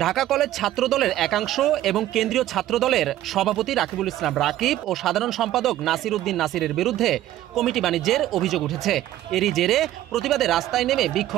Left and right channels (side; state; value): left; quieter; 13.8 dB